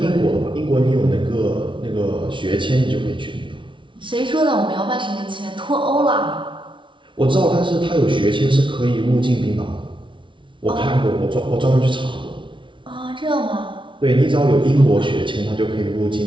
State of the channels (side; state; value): left; late; 0.24 ms